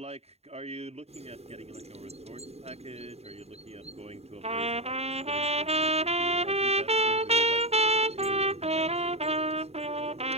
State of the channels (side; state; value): left; late; 0.30 ms